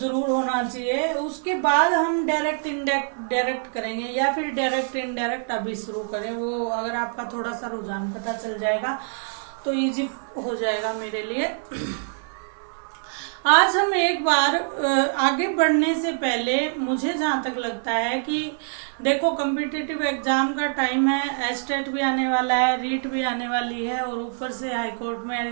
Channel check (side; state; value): left; silent; 62 dB below the other